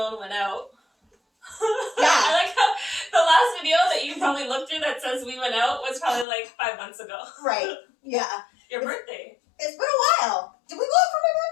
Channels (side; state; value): right; drops out; at 6.2 s